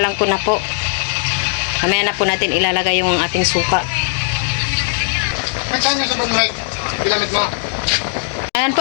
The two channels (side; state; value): right; silent; digital silence